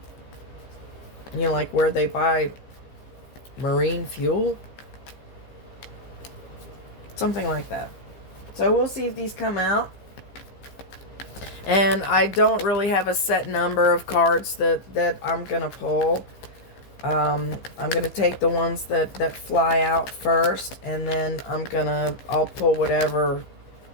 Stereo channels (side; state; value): right; late; 15 ms